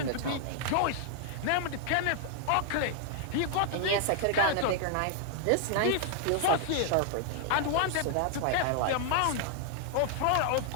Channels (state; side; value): different; both; correlation 0.00